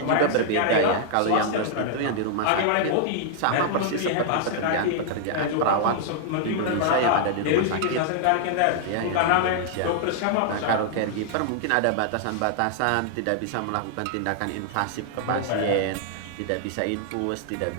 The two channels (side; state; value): both; different; correlation -0.01